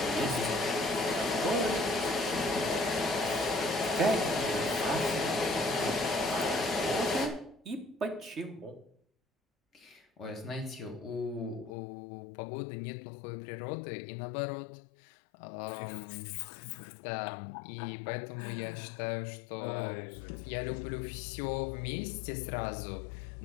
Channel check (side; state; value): right; drops out; at 11.7 s